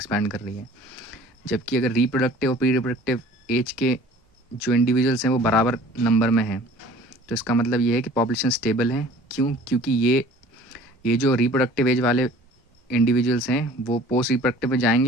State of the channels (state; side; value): normal; both; correlation 0.48